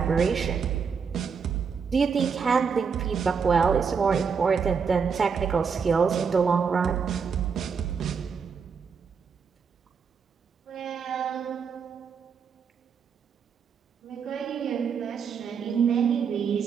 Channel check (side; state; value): left; quieter; 6.1 dB